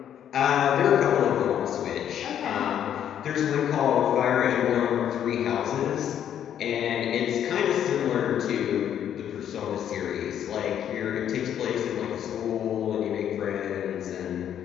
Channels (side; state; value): right; quieter; 9.8 dB